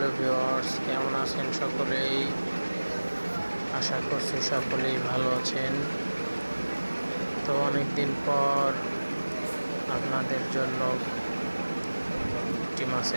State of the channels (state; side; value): inverted; both; correlation -1.00